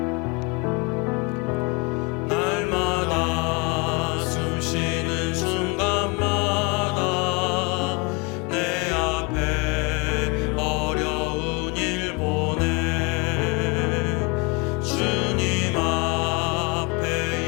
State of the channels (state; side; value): quieter; right; 30.0 dB